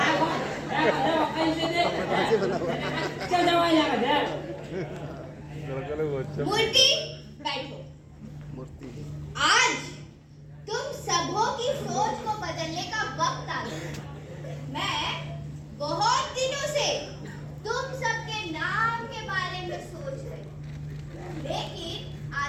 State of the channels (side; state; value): both; identical; correlation 1.00